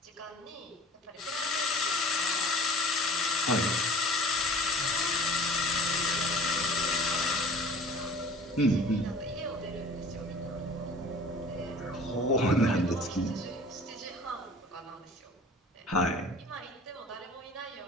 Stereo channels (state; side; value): normal; both; correlation 0.47